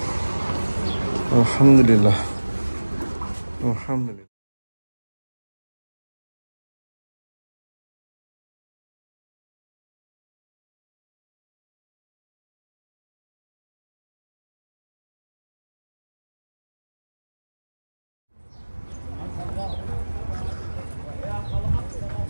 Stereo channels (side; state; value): both; inverted; correlation -1.00